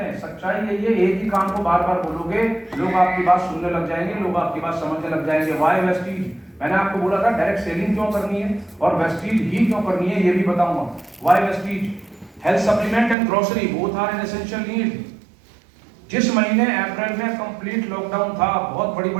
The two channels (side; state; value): left; drops out; at 13.2 s